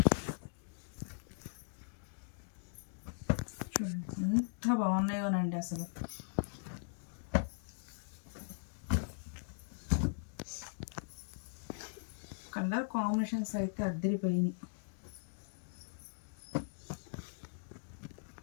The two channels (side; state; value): right; silent; digital silence